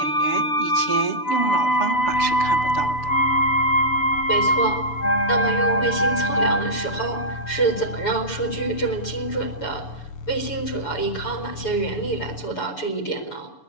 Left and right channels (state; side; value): late; right; 6.9 ms